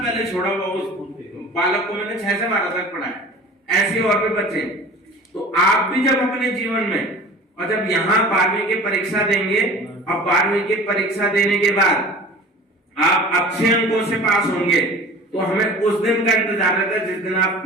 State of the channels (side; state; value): both; normal; correlation 0.41